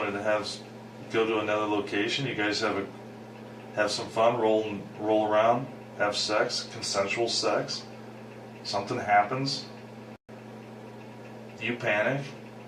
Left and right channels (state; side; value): identical; both; correlation 1.00